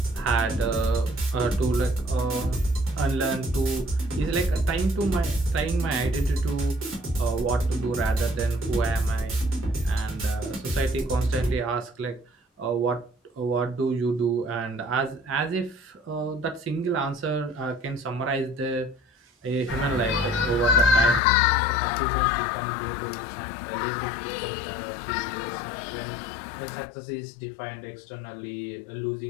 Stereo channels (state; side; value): drops out; right; at 21.2 s